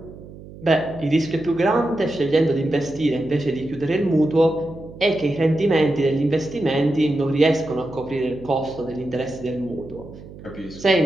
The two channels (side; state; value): right; noise; hum, 17 dB below the sound